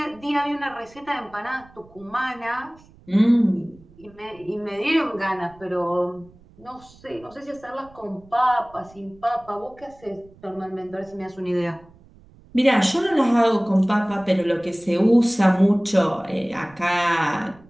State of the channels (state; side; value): noise; right; rumble, 26 dB below the sound